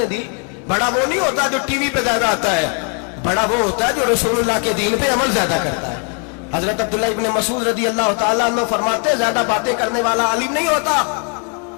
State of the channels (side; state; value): right; quieter; 39.9 dB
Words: दी? बड़ा वो नहीं होता जो टीवी पे ज्यादा आता है, बड़ा वो होता है जो रसूलुल्लाह के दीन पे अमल ज्यादा करता है। हजरत अब्दुल्लाह इब्न मसूद रदी अल्लाह ताला अन्हु फरमाते ज्यादा बातें करने वाला आलिम नहीं होता।